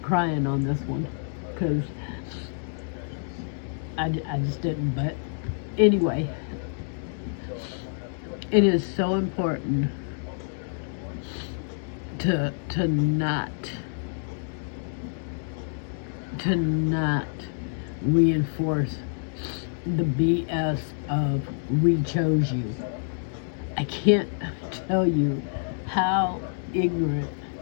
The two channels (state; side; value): silent; right; digital silence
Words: crying on this one because I just didn't. But anyway, it is so important to not reinforce the BS of we chose you. I can't tell you how ignorant.